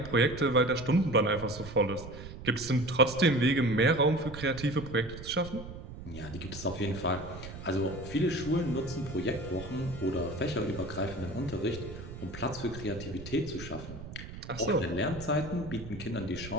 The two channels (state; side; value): noise; right; rumble, 12 dB below the sound